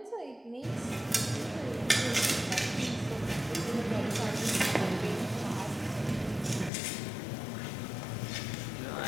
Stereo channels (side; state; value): right; drops out; at 6.7 s